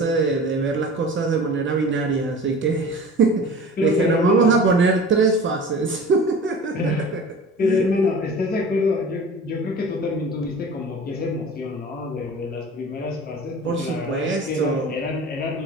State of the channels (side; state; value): both; normal; correlation 0.39